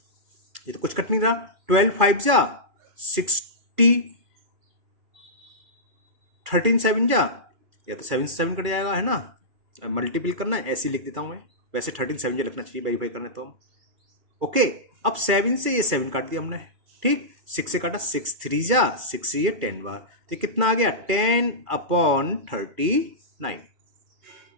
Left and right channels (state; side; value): late; left; 2.3 ms